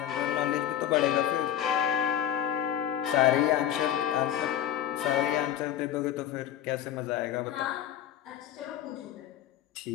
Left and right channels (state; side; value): quieter; right; 11.0 dB